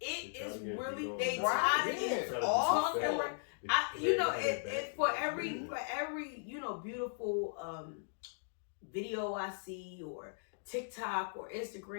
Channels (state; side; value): silent; right; digital silence